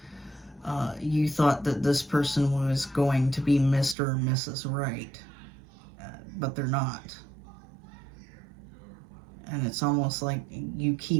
You thought that this person was going to be Mr. or Mrs. Right, but they're not. And it's almost like you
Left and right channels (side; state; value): left; drops out; at 4.0 s